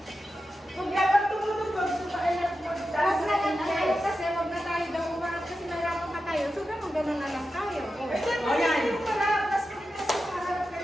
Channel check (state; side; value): normal; both; correlation 0.91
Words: Kung dapat tumutugtog sa kailan mo, Huwag na lang tayo kasi huwag na tayo daw umarap kasi nahirapan pa tayo. So ganun na lang tayo. O, yan. Yung marap, mas kasi sa harap